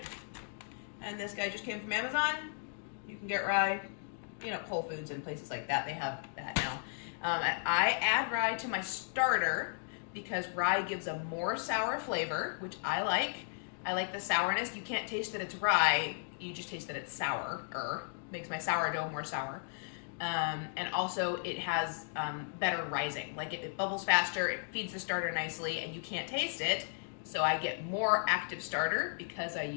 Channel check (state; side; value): silent; right; digital silence